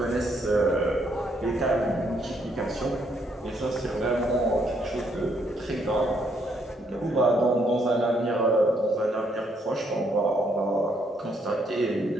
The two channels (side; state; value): both; normal; correlation 0.72